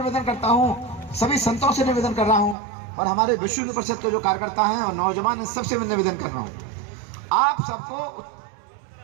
करता हूँ, सभी संतों से निवेदन कर रहा हूँ, और हमारे विश्व हिंदू परिषद के जो कार्यकर्ता हैं और नौजवान, सबसे मैं निवेदन कर रहा हूँ, आप सबको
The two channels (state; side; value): drops out; left; at 2.6 s